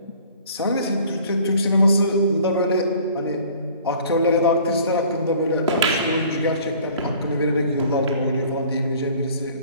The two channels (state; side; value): inverted; both; correlation -0.51